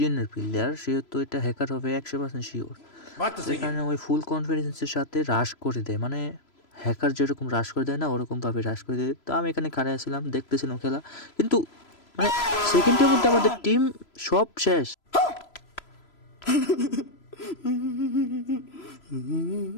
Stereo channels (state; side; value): late; right; 3.0 ms